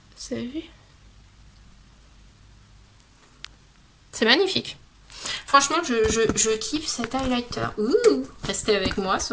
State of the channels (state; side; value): identical; both; correlation 1.00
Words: Vous avez vu ? C'est magnifique. Franchement, je kiffe cet highlighter. Ouh, restez avec moi